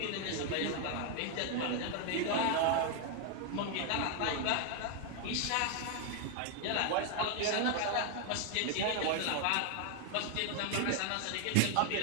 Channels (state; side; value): different; both; correlation 0.01